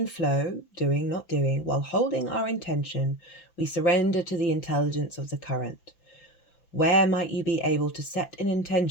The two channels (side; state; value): right; late; 5.9 ms